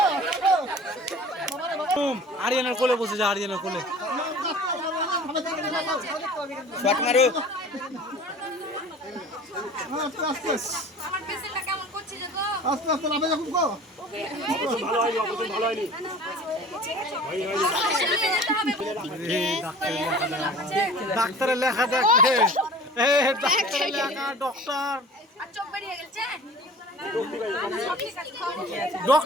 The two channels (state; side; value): normal; both; correlation 0.43